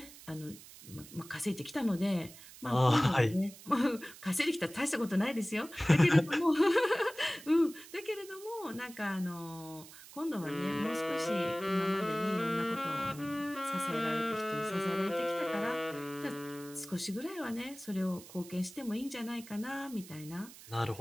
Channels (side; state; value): right; noise; hiss, 18 dB below the sound